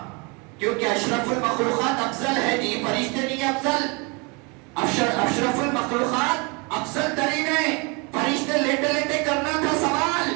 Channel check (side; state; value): left; quieter; 30.3 dB